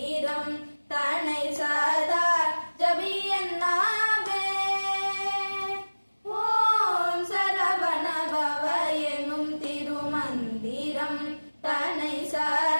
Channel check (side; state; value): both; inverted; correlation -1.00